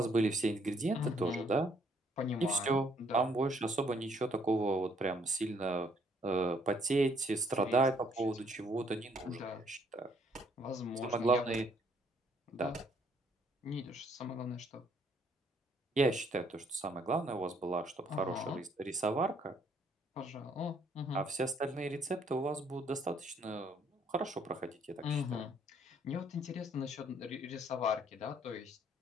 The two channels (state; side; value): normal; both; correlation 0.66